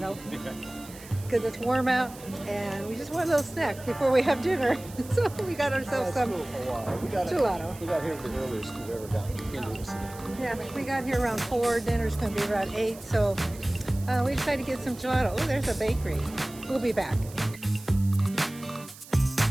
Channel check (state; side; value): noise; right; hiss, 18 dB below the sound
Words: because it's warm out, and we just want a little snack before we have dinner. So we got ourselves some gelato. We got here the earliest we've ever gotten into the city. Yeah, we got here around 4. Dinner's going to be around 8, so we decided to get some gelato. Oh, there's a bakery. We'll be back.